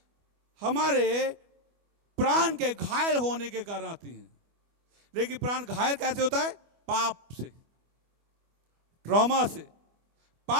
हमारे प्राण के घायल होने के कारण आती हैं। लेकिन प्राण घायल कैसे होता है? पाप से, ट्रॉमा से।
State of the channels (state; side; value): late; left; 25 ms